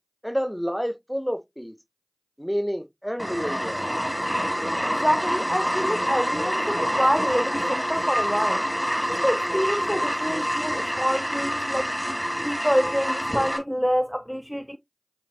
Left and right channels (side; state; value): both; identical; correlation 1.00